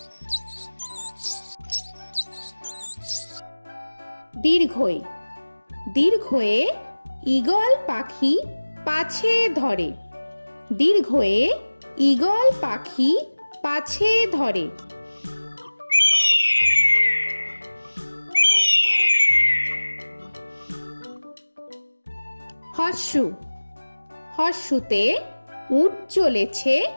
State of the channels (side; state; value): both; inverted; correlation -1.00